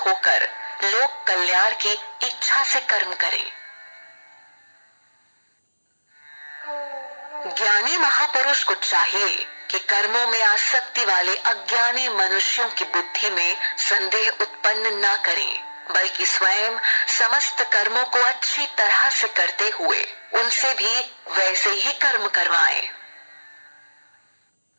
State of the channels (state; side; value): inverted; both; correlation -1.00